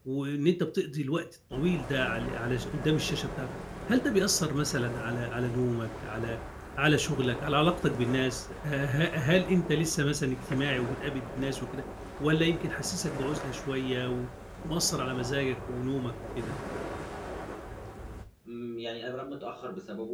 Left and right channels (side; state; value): both; identical; correlation 1.00